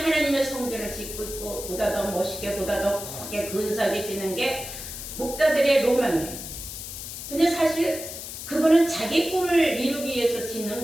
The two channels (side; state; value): left; noise; hiss, 9 dB below the sound